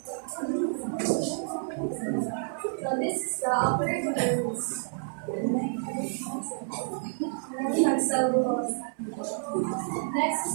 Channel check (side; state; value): left; silent; 58 dB below the other